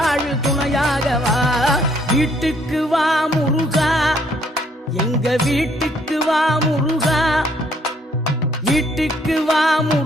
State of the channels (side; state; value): both; normal; correlation 0.66